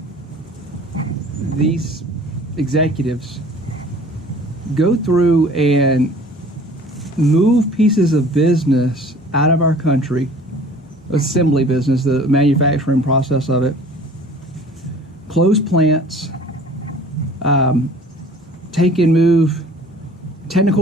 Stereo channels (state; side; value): normal; both; correlation 0.48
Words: these executives go through and move pieces of business out of our country, assembly business, the manufacturing process of it, close plants, take and move